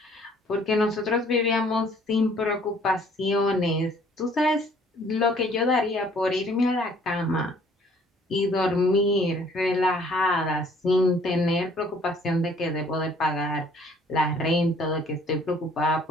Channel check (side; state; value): both; normal; correlation 0.59